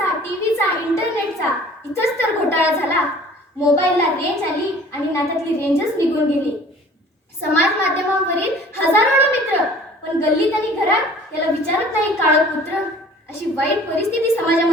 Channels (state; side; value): normal; both; correlation 0.49